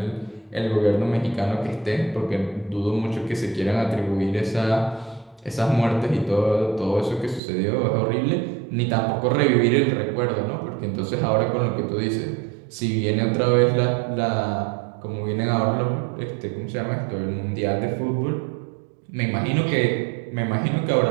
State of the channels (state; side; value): drops out; left; at 7.4 s